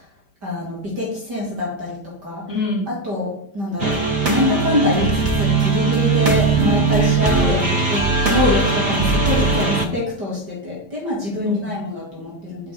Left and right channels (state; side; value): late; left; 5.1 ms